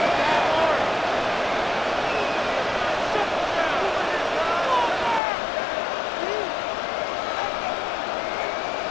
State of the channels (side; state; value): right; drops out; at 5.2 s